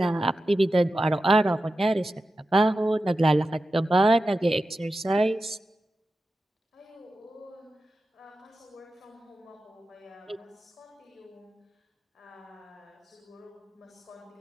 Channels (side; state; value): both; normal; correlation 0.92